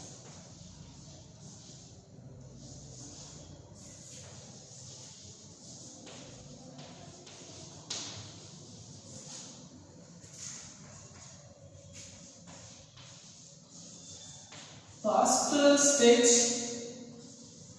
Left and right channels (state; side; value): identical; both; correlation 1.00